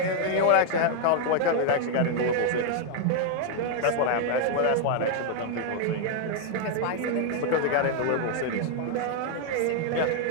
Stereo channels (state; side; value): different; both; correlation 0.00